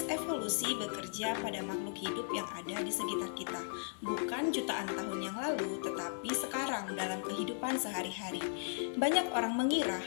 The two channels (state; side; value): silent; right; digital silence